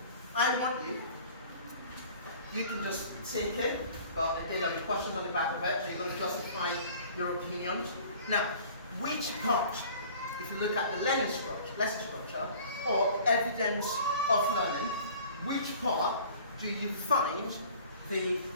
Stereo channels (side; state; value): both; inverted; correlation -0.48